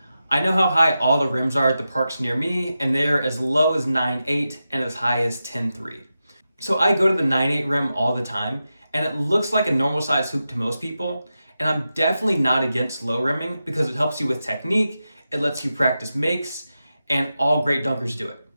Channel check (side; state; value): both; inverted; correlation -0.91